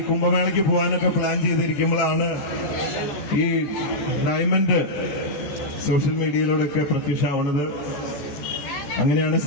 കുംഭമേളയ്ക്ക് പോകാനൊക്കെ പ്ലാൻ ചെയ്തിരിക്കുമ്പോഴാണ് ഈ ഡയമണ്ട് സോഷ്യൽ മീഡിയയിലൂടെയൊക്കെ പ്രത്യക്ഷമാവുന്നത്. അങ്ങനെയാണ്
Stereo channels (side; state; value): right; late; 14 ms